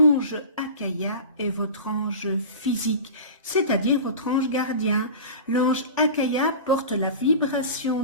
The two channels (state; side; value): inverted; both; correlation -0.34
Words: Akaya est votre ange physique, c'est-à-dire votre ange gardien. L'ange Akaya porte la vibration